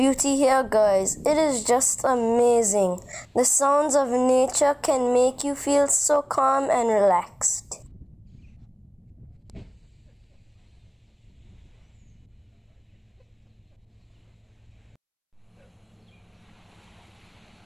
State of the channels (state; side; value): identical; both; correlation 1.00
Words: here guys, it is just amazing. The sounds of nature can make you feel so calm and relaxed.